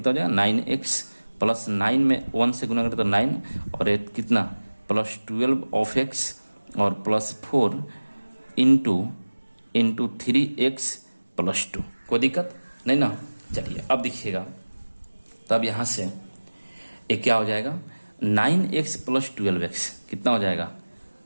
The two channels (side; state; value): both; inverted; correlation -1.00